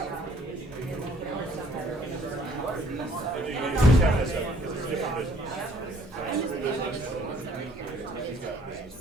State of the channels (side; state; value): both; normal; correlation 0.59